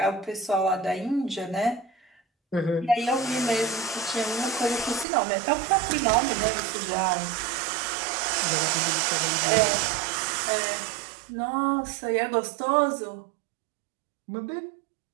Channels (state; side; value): drops out; left; at 5.1 s